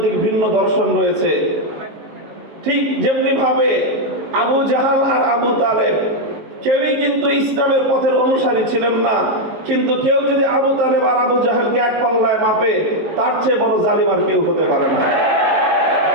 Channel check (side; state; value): left; late; 19 ms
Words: ভিন্ন দর্শন রয়েছে। ঠিক যেমনি ভাবে আবু জাহাল আর আবু তালেব কেউই কিন্তু ইসলামের পথের অনুসারী ছিলেন না, কিন্তু কেউ যদি আবু তালেব আর আবু জাহেলকে এক পাল্লায় মাপে, তার চেয়ে বড় জালিম আর কেউ হতে পারে না।